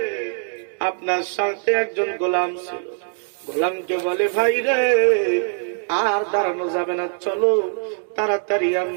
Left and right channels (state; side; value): silent; left; 64 dB below the other